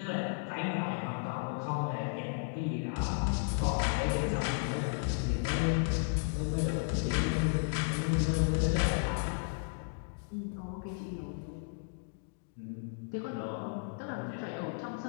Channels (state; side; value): silent; right; digital silence